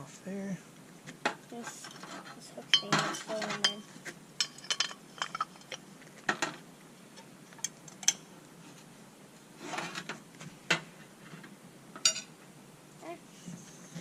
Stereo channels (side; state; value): both; identical; correlation 1.00